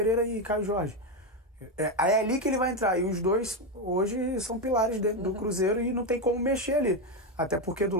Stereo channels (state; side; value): normal; both; correlation 0.09